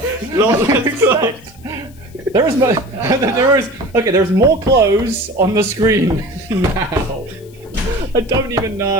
Lot less clothes. There's more clothes on the screen now. I don't even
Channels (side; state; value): left; noise; hiss, 27 dB below the sound